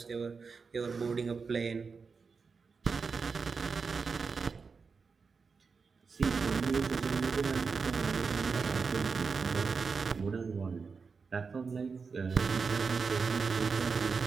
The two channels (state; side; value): quieter; left; 5.1 dB